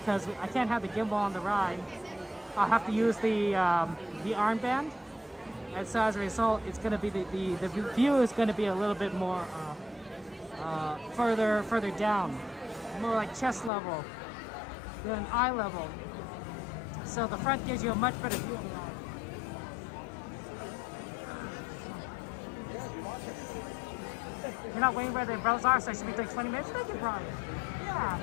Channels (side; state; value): right; drops out; at 13.7 s